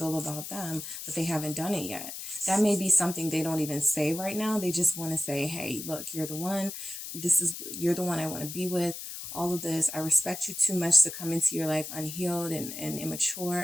about them, but they haven't done it yet. That may be something they don't even say right now. They just want to say, hey, look, you're the one. You're the one I want to be with. All of this, I respect you too much to come into your life unhealed and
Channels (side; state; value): left; noise; hiss, 8 dB below the sound